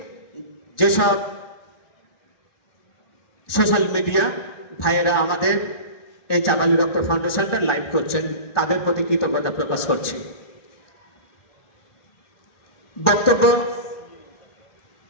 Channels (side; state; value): right; late; 1.4 ms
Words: যেসব সোশ্যাল মিডিয়া ভাইয়েরা আমাদের এই চাভালি রক্ত ফাউন্ডেশনটা লাইভ করছেন, তাদের প্রতি কৃতজ্ঞতা প্রকাশ করছি। বক্তব্য